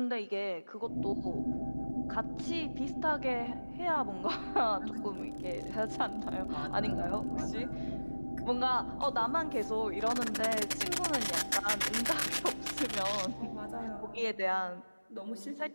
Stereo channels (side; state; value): both; inverted; correlation -1.00